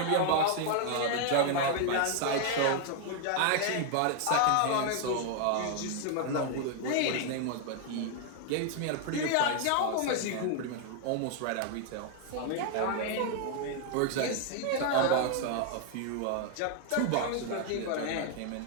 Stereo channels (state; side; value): different; both; correlation 0.00